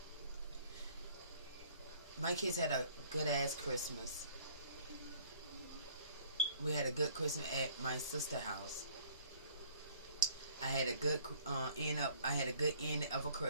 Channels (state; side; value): inverted; both; correlation -0.56